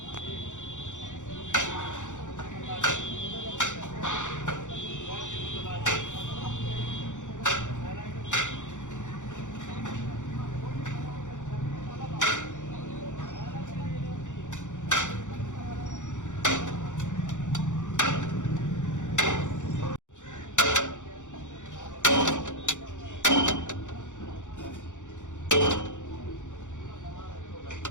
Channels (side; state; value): right; late; 0.85 ms